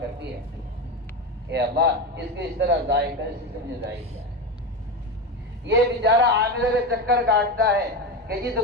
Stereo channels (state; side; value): normal; both; correlation 0.18